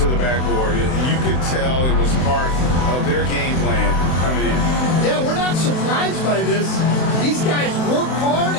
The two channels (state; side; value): late; right; 31 ms